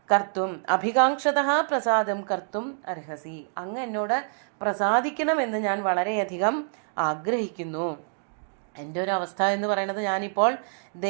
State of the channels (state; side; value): silent; left; digital silence